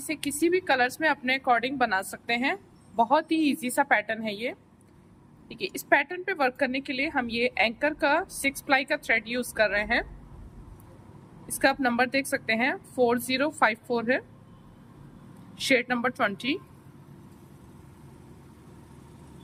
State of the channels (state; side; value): identical; both; correlation 1.00